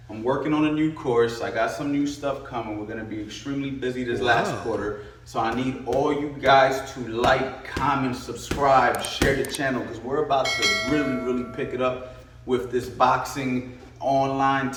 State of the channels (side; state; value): both; identical; correlation 1.00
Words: I'm working on a new course. I got some new stuff coming. We're going to be extremely busy this last quarter. So I need all you guys to like, comment, subscribe, share the channel, because we're about to really pick it up with this boxing online